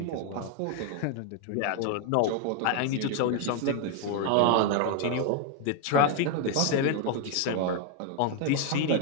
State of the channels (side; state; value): both; different; correlation 0.01